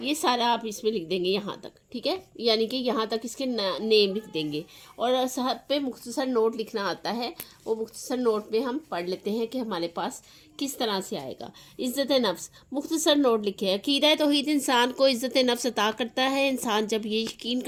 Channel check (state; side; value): identical; both; correlation 1.00